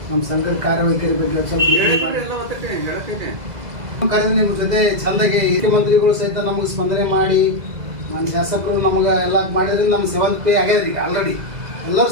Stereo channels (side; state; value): left; late; 2.0 ms